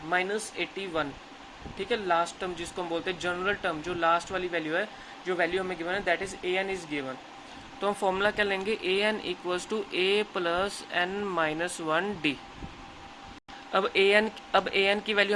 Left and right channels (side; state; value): both; identical; correlation 1.00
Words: -81, ठीक है, लास्ट टर्म जिसको हम बोलते हैं जनरल टर्म, जो लास्ट वाली वैल्यू है, जो वैल्यू हमें गिवन है that is an is given. तो हम फॉर्मूला क्या लेंगे, an equals to a plus n minus 1d। अब an की वैल्यू